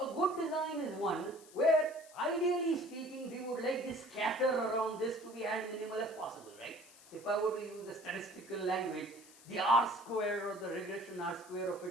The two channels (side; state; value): left; noise; hiss, 22 dB below the sound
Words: A good design is one where, ideally speaking, we would like this scatter around this to be as minimal as possible, right? So if I were to use the statistical language, the R square or the regression R square of